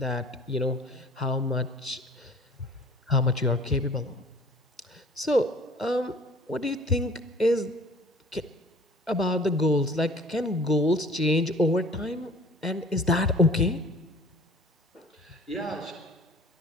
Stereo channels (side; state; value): both; normal; correlation 0.49